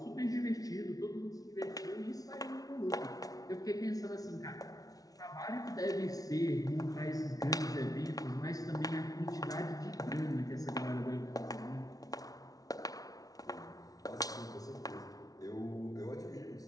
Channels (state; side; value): late; right; 0.18 ms